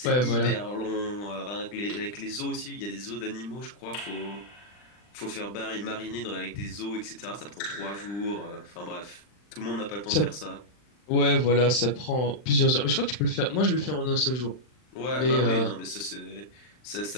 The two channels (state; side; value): late; right; 40 ms